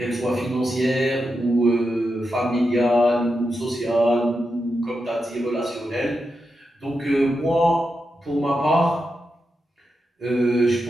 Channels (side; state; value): both; normal; correlation 0.87